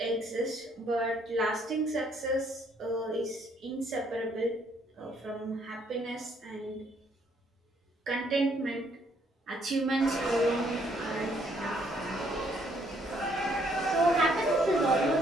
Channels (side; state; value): both; normal; correlation 0.68